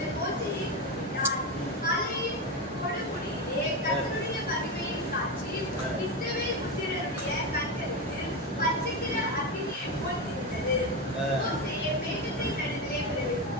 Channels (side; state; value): both; normal; correlation 0.15